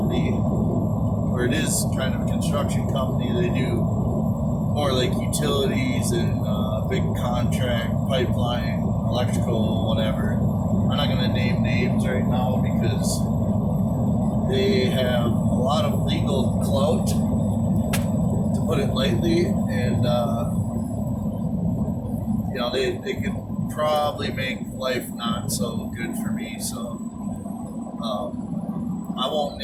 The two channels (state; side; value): identical; both; correlation 1.00